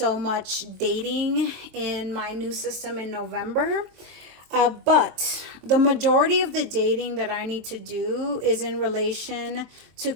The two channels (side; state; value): left; late; 23 ms